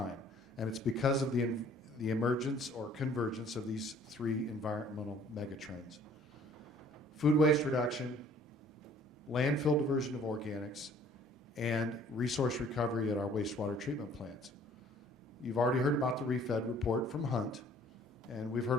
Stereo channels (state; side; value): normal; both; correlation 0.55